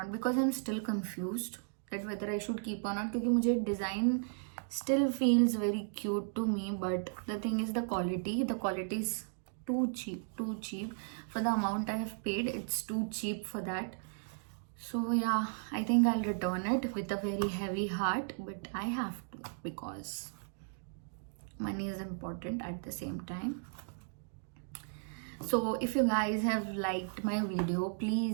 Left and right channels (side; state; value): left; silent; digital silence